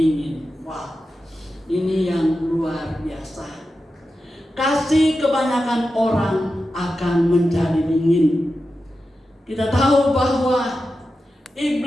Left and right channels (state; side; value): normal; both; correlation 0.91